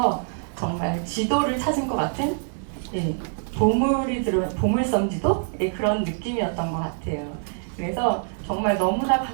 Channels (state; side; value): silent; left; 59 dB below the other